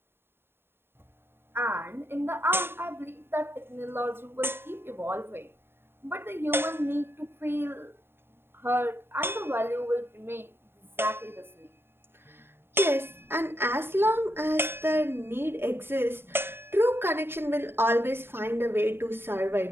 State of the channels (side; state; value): left; late; 0.11 ms